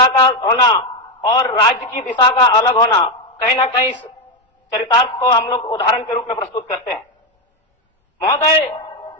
का होना और राज्य की दिशा का अलग होना, कहीं ना कहीं चरितार्थ को हम लोग उदाहरण के रूप में प्रस्तुत करते हैं। महोदय,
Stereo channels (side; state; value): both; normal; correlation 0.07